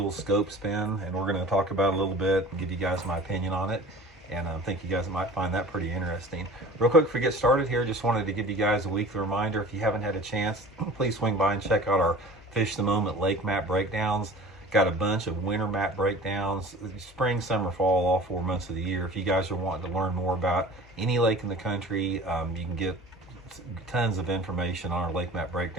Scope Spin, and we're going to talk about it a little bit and give you guys my opinion on it. And I think you guys might find that pretty interesting. Real quick, before we get started here, just wanted to give you guys a weekly reminder. If you haven't had a chance, please swing by and check out our Fish the Moment lake map breakdowns. Got a bunch of winter map breakdowns, spring, summer, fall, all 4 months of the year. If you guys are wanting to learn more about any lake in the country, you can get tons of information on our lake map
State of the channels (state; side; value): normal; both; correlation 0.42